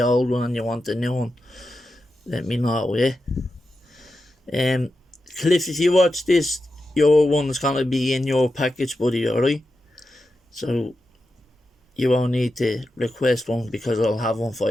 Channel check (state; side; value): normal; both; correlation 0.89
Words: one and you want a new one, let me know, yeah? Cliff, if you watch this, your one's gonna be in your package, buddy, alright? So you won't need to request one, because I'll have one